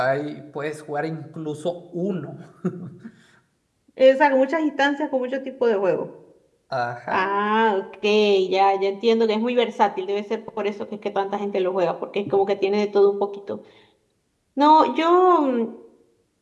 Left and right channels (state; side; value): identical; both; correlation 1.00